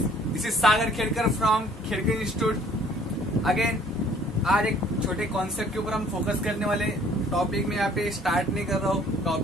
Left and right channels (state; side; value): normal; both; correlation 0.57